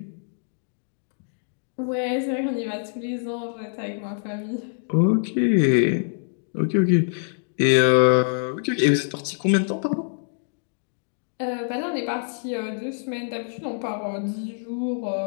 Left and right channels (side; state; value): right; silent; digital silence